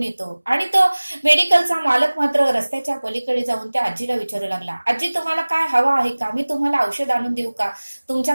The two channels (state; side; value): inverted; both; correlation -1.00